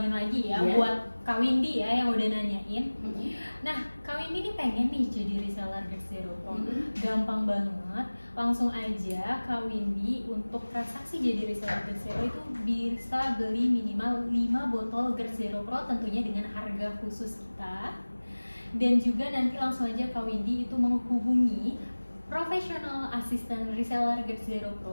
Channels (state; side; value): inverted; both; correlation -1.00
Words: lagi ya buat Kak Windy ya yang udah nanyain. Nah, Kak Windy ini pengen nih jadi reseller GERD Zero Pro. Gampang banget, langsung aja Kak Windy untuk transaksi jadi reseller GERD Zero itu bisa beli minimal 5 botol GERD Zero Pro tentunya dengan harga khusus kita. Dan juga nanti langsung aja Kak Windy itu menghubungi professional assistant reseller GERD Zero